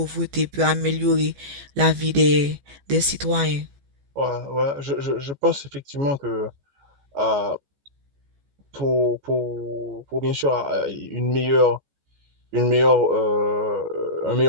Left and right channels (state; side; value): late; left; 14 ms